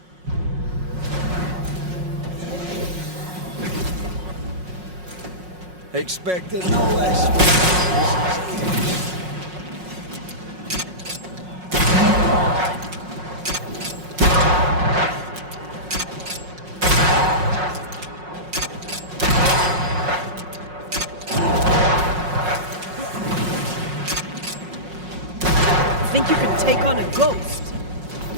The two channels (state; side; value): late; left; 5.5 ms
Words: Expected no less. Think you can take on a ghost?